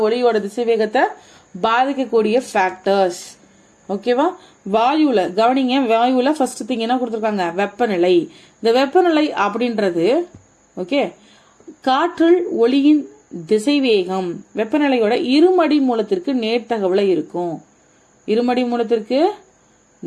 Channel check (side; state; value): both; identical; correlation 1.00